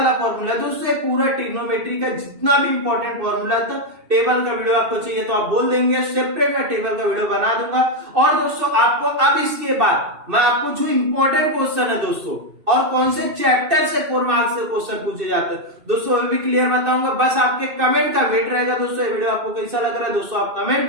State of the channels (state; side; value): late; left; 2.6 ms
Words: फॉर्मूला दोस्तों। पूरा ट्रिग्नोमेट्री का जितना भी इंपॉर्टेंट फॉर्मूला था, टेबल का वीडियो आपको चाहिए तो आप बोल देंगे, सेपरेट मैं टेबल का वीडियो बना दूंगा। और दोस्तों आपको अब इसके बाद मैं आपको जो इंपॉर्टेंट क्वेश्चन है दोस्तों, और कौन से चैप्टर से 4 मार्क्स से क्वेश्चन पूछे जाते हैं दोस्तों, वो भी क्लियर बताऊंगा। बस आपके कमेंट का वेट रहेगा दोस्तों। ये वीडियो आपको कैसा लग रहा है दोस्तों, आप कमेंट